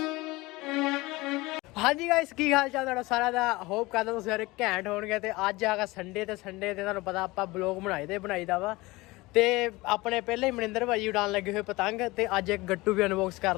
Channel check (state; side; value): quieter; right; 21.6 dB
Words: ਹਾਂਜੀ ਗਾਇਸ, ਕੀ ਹਾਲ ਚਾਲ ਤੁਹਾਡਾ ਸਾਰਿਆਂ ਦਾ। ਹੋਪ ਕਰਦਾ ਤੁਸੀਂ ਸਾਰੇ ਘੈਂਟ ਹੋਣਗੇ। ਤੇ ਅੱਜ ਆਗਾ ਸੰਡੇ ਤੇ ਤੁਹਾਨੂੰ ਪਤਾ ਆਪਾਂ ਬਲੌਗ ਬਣਾਈਦਾ ਵਾ। ਤੇ ਆਪਣੇ ਪਹਿਲੇ ਹੀ ਮਨਿੰਦਰ ਭਾਜੀ ਉਡਾਣ ਲੱਗੇ ਹੋਏ ਪਤੰਗ, ਤੇ ਅੱਜ ਇੱਕ ਗੱਟੂ ਵੀ ਅਨਬਾਕਸ